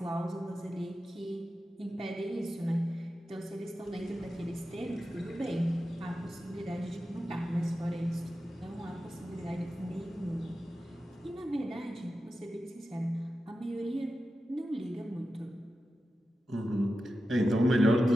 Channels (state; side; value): normal; both; correlation 0.92